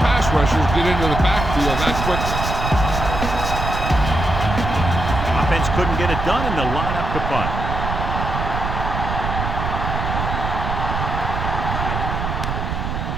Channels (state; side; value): noise; right; rumble, 3 dB below the sound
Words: rushers get into the backfield that quickly. Offense couldn't get it done, and they'll line up to punt.